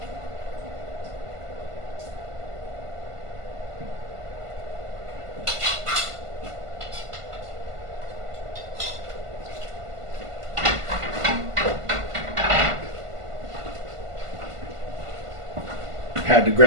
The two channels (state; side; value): late; left; 1.5 ms